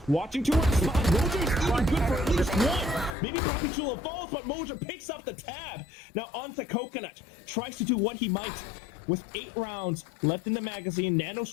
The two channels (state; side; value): drops out; right; at 3.2 s